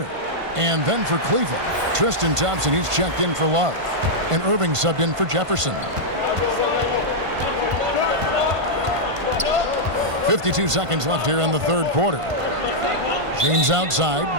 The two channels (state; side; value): late; left; 1.5 ms